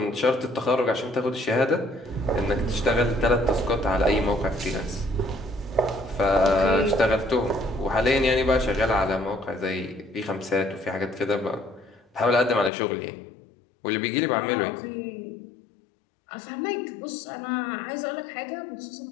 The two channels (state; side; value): drops out; right; at 12.7 s